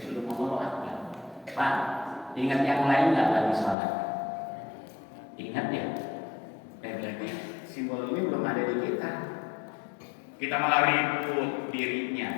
belum mau apa. Pak, ingat yang lain nggak lagi sholat? Ingat ya. Berarti simbol ini belum ada di kita. Kita malah ribut dirinya,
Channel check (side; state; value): right; drops out; at 3.8 s